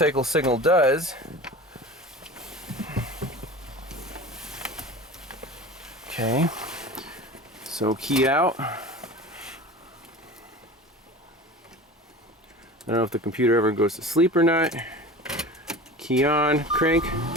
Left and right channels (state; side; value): normal; both; correlation 0.35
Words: signal does. Okay, so key out. I don't know if the computer ever goes to sleep or not. Key on, crank.